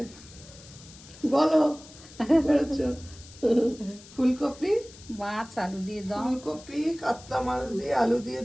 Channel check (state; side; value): noise; left; hiss, 20 dB below the sound